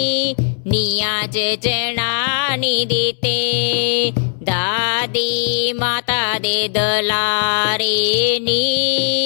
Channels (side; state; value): right; silent; 66 dB below the other